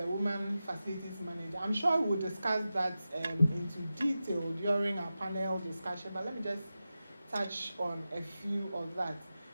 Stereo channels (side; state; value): both; inverted; correlation -0.93